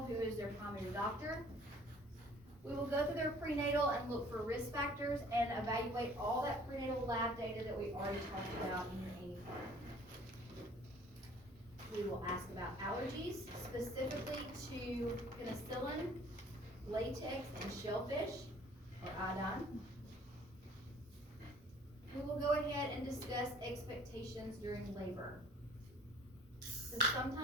who is their primary doctor. We will go through their prenatal and look for risk factors and evaluate all that prenatal lab data that we already talked about in your AIM card. We will ask about allergies, specifically to penicillin, latex, and shellfish, or iodine. We will go ahead and discuss expectations during labor. So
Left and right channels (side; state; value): both; normal; correlation 0.53